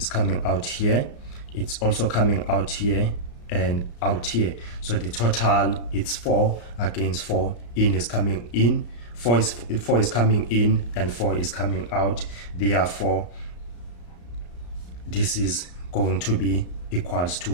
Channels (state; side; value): late; right; 34 ms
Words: coming out here, it's also coming out here and out here. So the total it's 4 against 4. In is coming in, 4 is coming in, and 4 is coming out. Therefore this is going to be equals